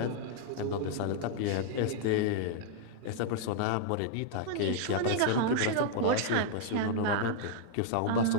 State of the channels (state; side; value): different; both; correlation -0.01